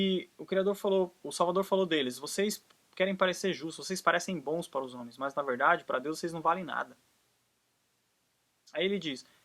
o Salvador falou deles, vocês querem parecer justos, vocês parecem bons para os homens, mas na verdade, para Deus, vocês não valem nada. Aí ele diz,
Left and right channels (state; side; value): identical; both; correlation 1.00